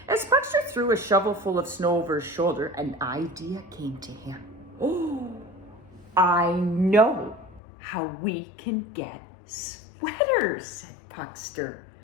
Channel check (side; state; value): right; drops out; at 7.6 s